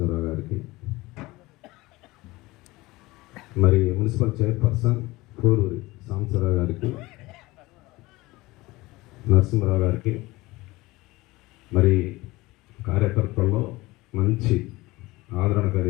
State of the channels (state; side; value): quieter; right; 20.6 dB